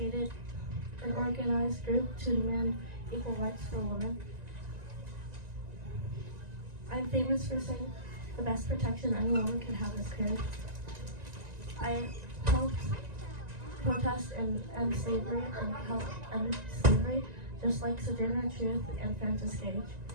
an organized group to demand equal rights for women. I'm famous for saying the best protection any woman can have is courage. I helped protest and end slavery and help end slavery, just like Sojourner Truth and Frances Gage.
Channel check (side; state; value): left; late; 1.9 ms